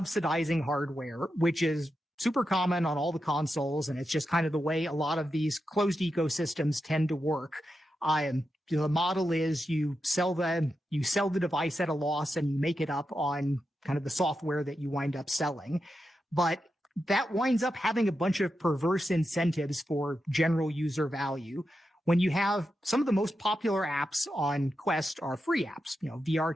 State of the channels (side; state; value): both; normal; correlation 0.88